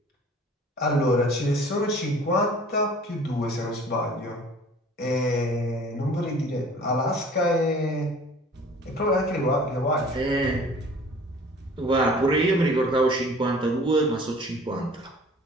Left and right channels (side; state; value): both; normal; correlation 0.48